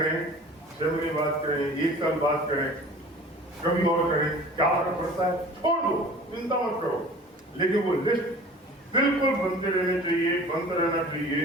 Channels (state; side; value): normal; both; correlation 0.43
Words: 6 महीने बाद करें, 1 साल बाद करें, कभी और करें, क्या फर्क पड़ता है? छोड़ दो, चिंता मत करो। लेकिन वो लिस्ट बिल्कुल बनते रहने चाहिए, बनता रहना चाहिए।